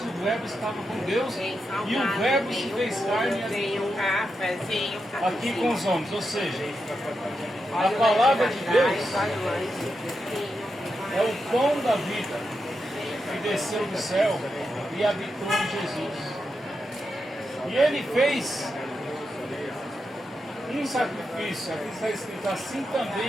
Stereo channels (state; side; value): normal; both; correlation 0.86